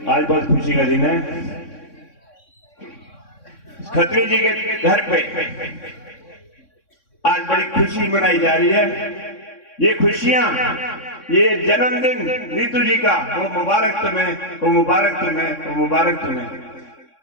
आज बहुत खुशी का दिन है। खत्री जी के घर पे आज बड़ी खुशी मनाई जा रही है। ये खुशियां, ये जन्मदिन नीतू जी का, वो मुबारक तुम्हें, वो मुबारक तुम्हें, वो मुबारक तुम्हें।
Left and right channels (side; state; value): right; late; 3.6 ms